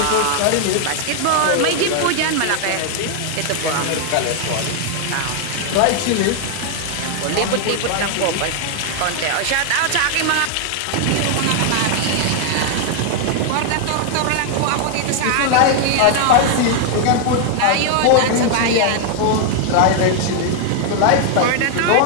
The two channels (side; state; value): both; different; correlation 0.00